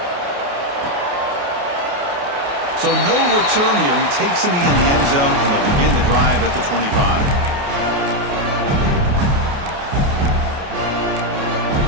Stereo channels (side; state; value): left; late; 28 ms